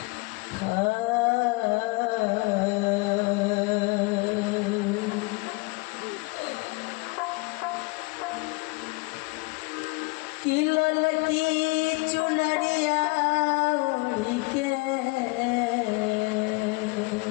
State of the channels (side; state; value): right; quieter; 27.4 dB